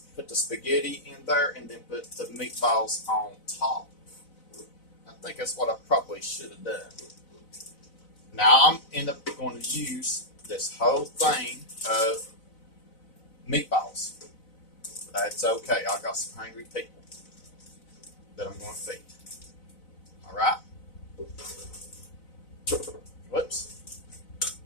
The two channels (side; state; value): right; late; 4.0 ms